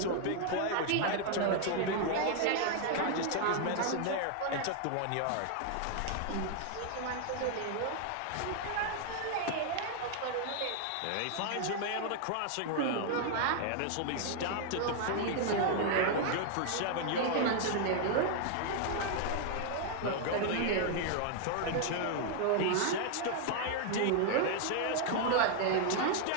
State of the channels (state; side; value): different; both; correlation 0.00